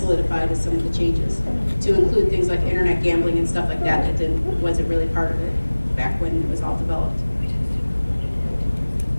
as some of the changes, to include things like internet gambling and stuff like that wasn't really part of it back when it was all developed.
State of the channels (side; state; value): both; inverted; correlation -1.00